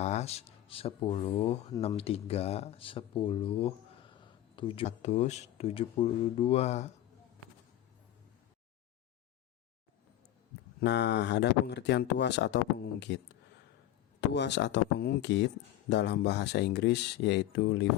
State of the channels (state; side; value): quieter; right; 13.1 dB